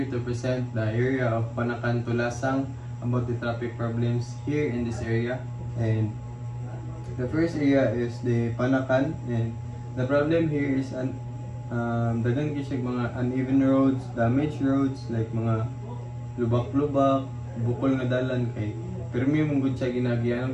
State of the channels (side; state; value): both; identical; correlation 1.00